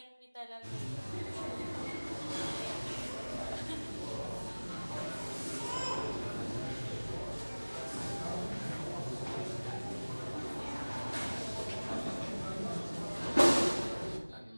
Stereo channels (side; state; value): both; inverted; correlation -1.00